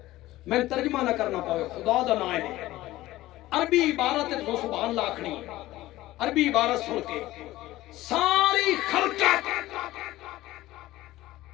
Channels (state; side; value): quieter; right; 16.6 dB